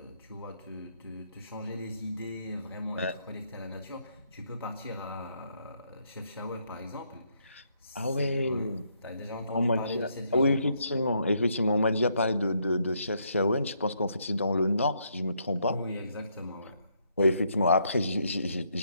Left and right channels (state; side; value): inverted; both; correlation -0.74